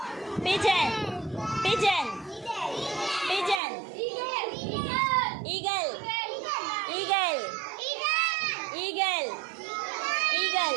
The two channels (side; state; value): left; drops out; at 3.6 s